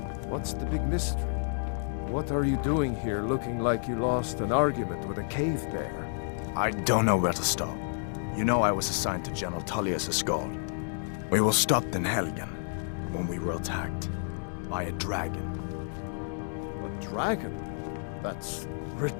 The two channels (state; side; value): silent; right; digital silence